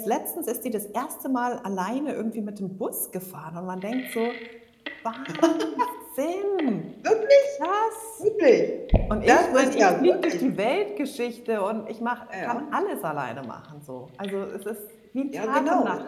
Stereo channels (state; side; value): identical; both; correlation 1.00